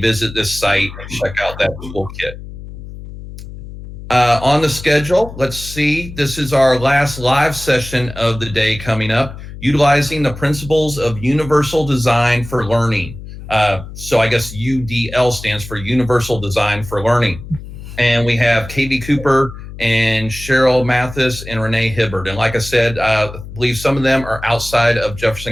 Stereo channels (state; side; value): noise; left; hum, 13 dB below the sound